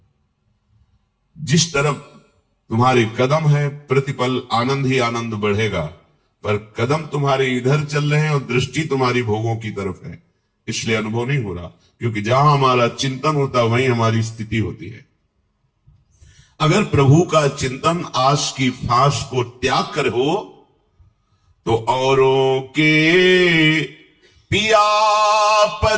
जिस तरफ तुम्हारे कदम है प्रतिपल आनंद ही आनंद बढ़ेगा, पर कदम तुम्हारे इधर चल रहे हैं और दृष्टि तुम्हारी भोगों की तरफ है, इसलिए अनुभव नहीं हो रहा। क्योंकि जहां हमारा चिंतन होता है वहीं हमारी स्थिति होती है। अगर प्रभु का चिंतन आस की फांस को त्याग कर हो तो औरों के पिया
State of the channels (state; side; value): identical; both; correlation 1.00